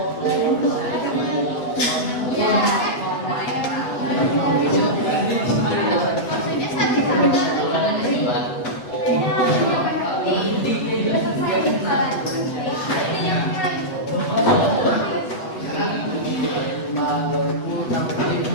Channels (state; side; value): late; right; 8.0 ms